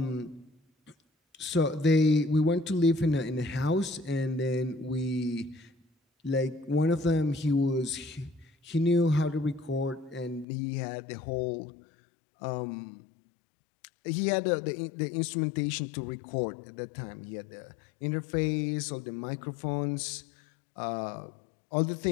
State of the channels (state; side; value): drops out; right; at 10.5 s